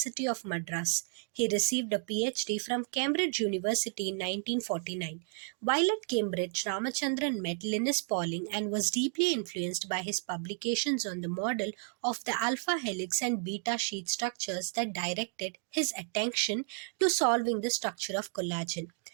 of Madras. He received a PhD from Cambridge University in 1949. While at Cambridge, Ramachandran met Linus Pauling and was deeply influenced by his publications on the model of the alpha helix and beta sheet structures that directed his attention to solving the structure of collagen.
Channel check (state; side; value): silent; left; 56 dB below the other